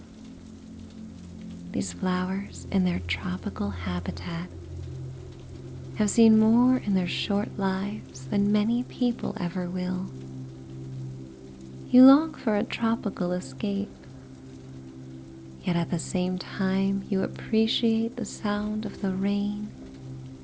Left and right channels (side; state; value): both; identical; correlation 1.00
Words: These flowers in their tropical habitat have seen more in their short lives than many people ever will. You long for a tropical escape, yet at the same time you appreciate the sound of the rain